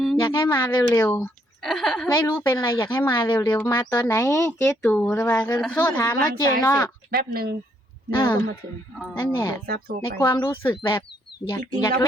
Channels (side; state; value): both; normal; correlation 0.71